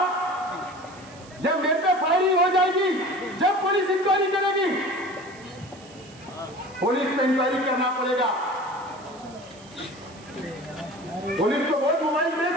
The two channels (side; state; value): right; noise; hiss, 23 dB below the sound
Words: जब मेरे पे फायरिंग हो जाएगी, जब पुलिस इंक्वायरी करेगी, पुलिस पे इंक्वायरी करना पड़ेगा। पुलिस तो बहुत मोबाइल